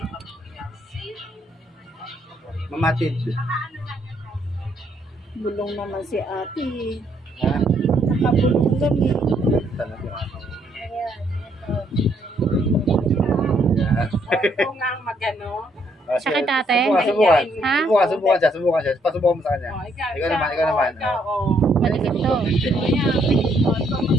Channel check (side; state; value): both; normal; correlation 0.71